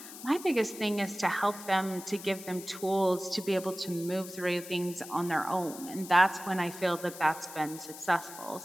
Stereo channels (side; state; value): left; noise; hiss, 14 dB below the sound